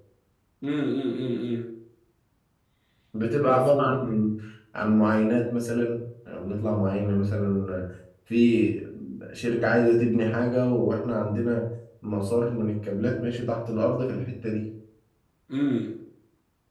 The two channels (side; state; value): both; identical; correlation 1.00